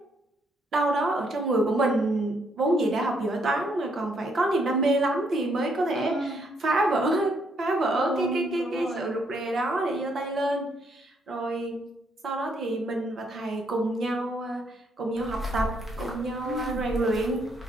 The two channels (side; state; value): both; normal; correlation 0.72